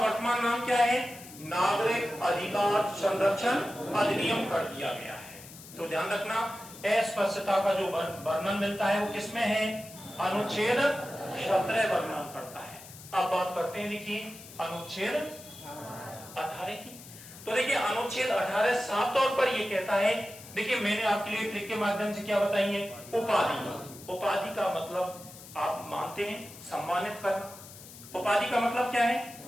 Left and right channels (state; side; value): noise; left; hiss, 17 dB below the sound